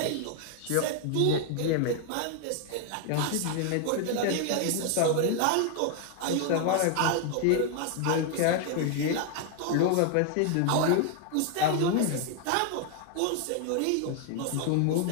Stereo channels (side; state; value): both; different; correlation 0.00